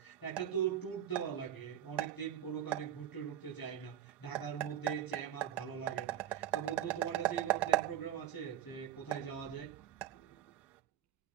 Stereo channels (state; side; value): quieter; left; 10.8 dB